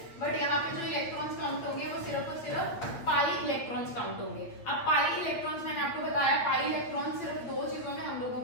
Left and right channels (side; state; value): right; late; 8.5 ms